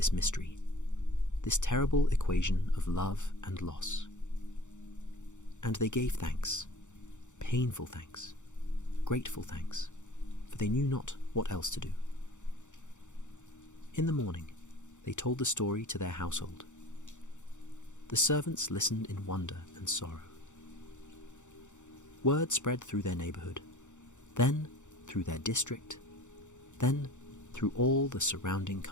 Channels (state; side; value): late; right; 0.85 ms